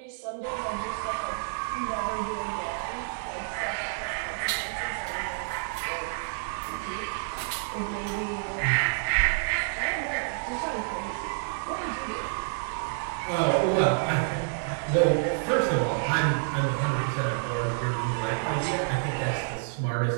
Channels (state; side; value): silent; left; digital silence